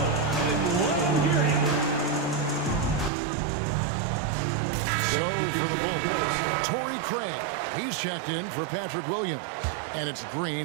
So for the Bulls, Torrey Craig. He's checked in for Patrick Williams. And it's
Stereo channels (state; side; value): drops out; left; at 3.1 s